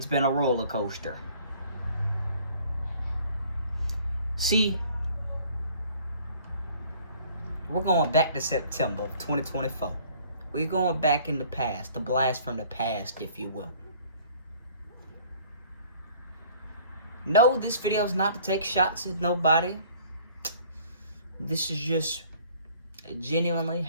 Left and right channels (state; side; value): inverted; both; correlation -0.54